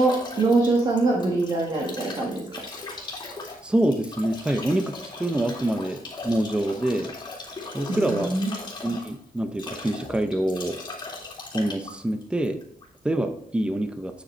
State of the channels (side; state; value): both; normal; correlation 0.84